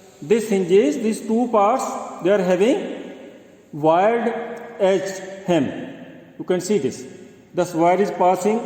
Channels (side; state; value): both; identical; correlation 1.00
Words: this hinges, these two parts, they are having wide edge hem. You can see this. The wire is passing